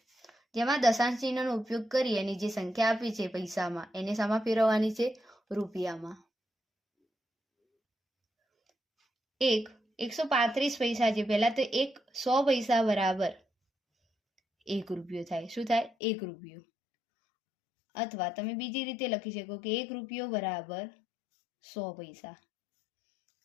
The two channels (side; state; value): right; drops out; at 15.9 s